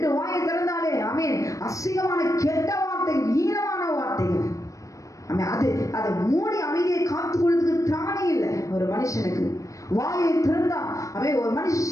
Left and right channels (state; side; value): late; right; 0.16 ms